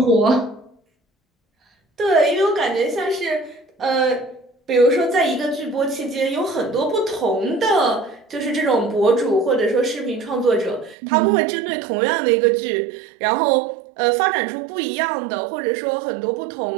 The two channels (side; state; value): left; drops out; at 11.0 s